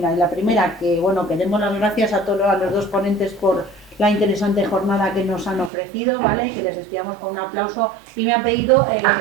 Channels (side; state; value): left; drops out; at 5.7 s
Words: La primera, que bueno, que demos las gracias a los 2 ponentes por la interesante jornada que nos han ofrecido, ¿vale? Que les despidamos con un aplauso, y me han pedido